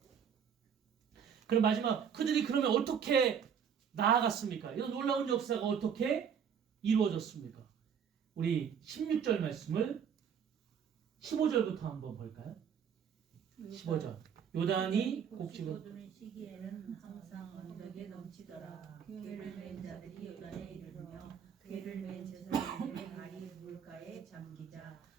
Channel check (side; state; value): left; quieter; 7.6 dB